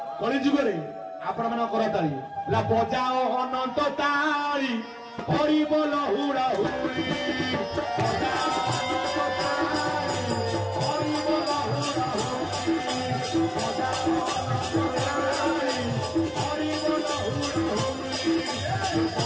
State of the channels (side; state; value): both; identical; correlation 1.00